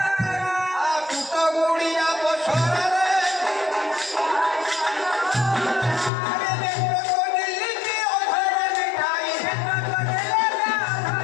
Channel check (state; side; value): drops out; right; at 6.1 s